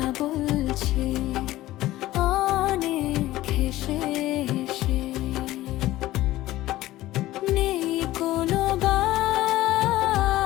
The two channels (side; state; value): right; quieter; 16.1 dB